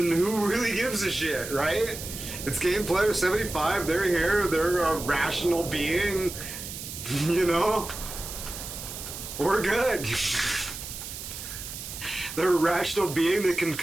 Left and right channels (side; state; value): right; noise; hiss, 9 dB below the sound